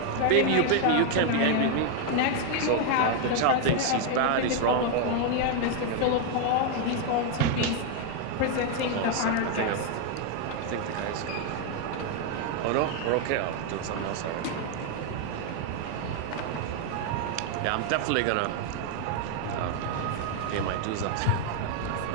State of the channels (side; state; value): both; different; correlation 0.01